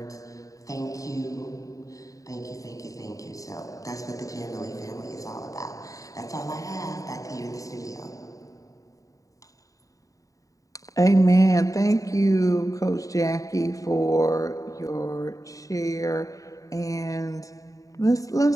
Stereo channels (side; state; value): right; late; 0.16 ms